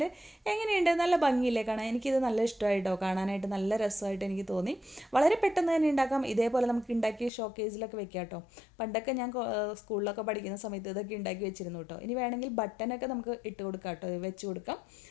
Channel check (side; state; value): right; drops out; at 7.3 s